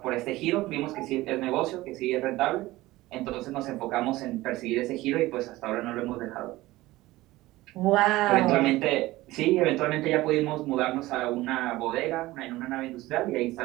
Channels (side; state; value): left; quieter; 18.2 dB